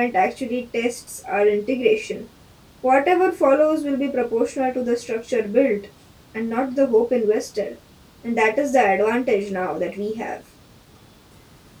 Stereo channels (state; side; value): identical; both; correlation 1.00